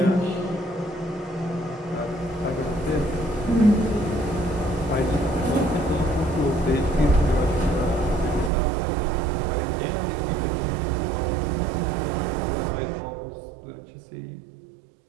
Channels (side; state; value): left; drops out; at 8.5 s